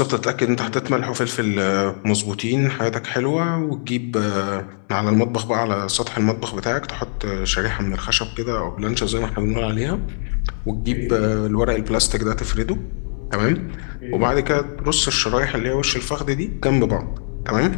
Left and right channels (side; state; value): right; silent; 61 dB below the other